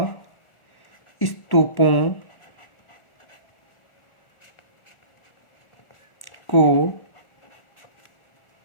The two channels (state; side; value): late; right; 1.4 ms